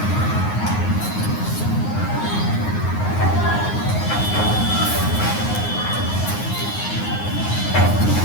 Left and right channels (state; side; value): late; right; 9.6 ms